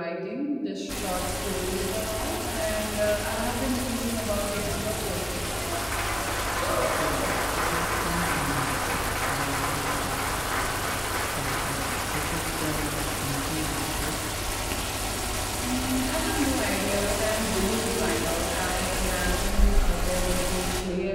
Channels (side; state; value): both; identical; correlation 1.00